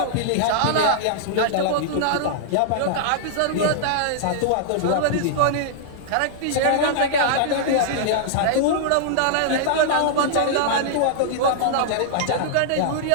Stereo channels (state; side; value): different; both; correlation -0.01